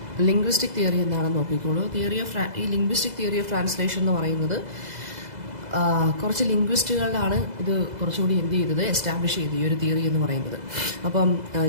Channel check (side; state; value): left; late; 2.0 ms